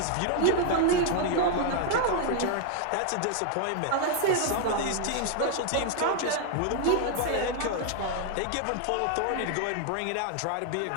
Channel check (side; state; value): both; different; correlation 0.00